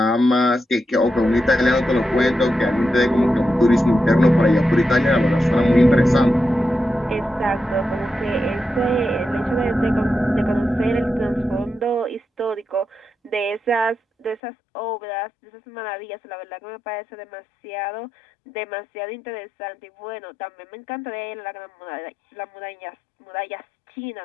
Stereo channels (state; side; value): drops out; right; at 14.4 s